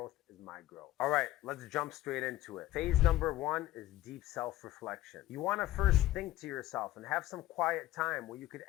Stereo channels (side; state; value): right; quieter; 15.4 dB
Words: is my growth. All right, let's jump straight into it. Phase number 1 is deep self-reflection. You want to first think to yourself and have some quiet time where you could